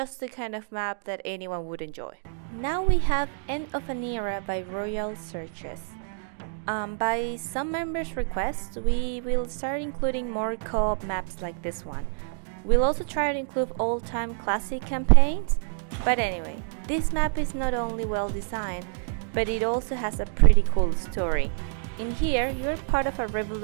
the kind of map that anyone would enjoy. Now we have End of an Era by Royal Searches. By some members' request, we will start including more co-op maps like this one. We'll also try to include all-time classic campaigns. But anyway, this map is not only well designed, but it also has a pretty cool story. In here, you're part of a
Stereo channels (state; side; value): silent; left; digital silence